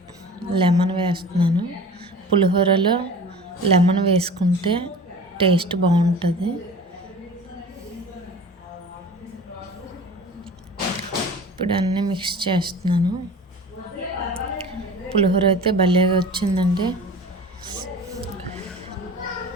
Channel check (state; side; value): normal; both; correlation 0.40